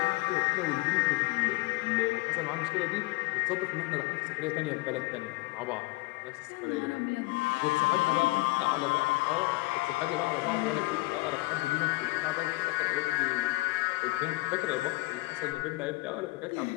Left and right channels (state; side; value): quieter; right; 22.9 dB